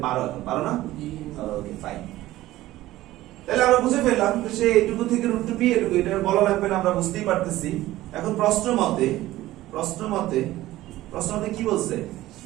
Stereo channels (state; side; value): quieter; left; 16.0 dB